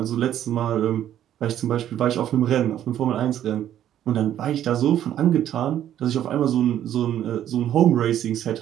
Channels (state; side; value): quieter; left; 11.1 dB